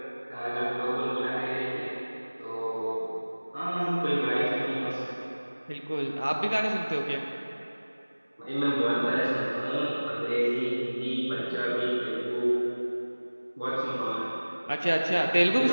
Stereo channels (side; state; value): both; inverted; correlation -1.00